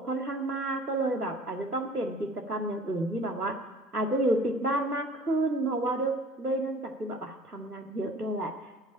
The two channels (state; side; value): normal; both; correlation 0.48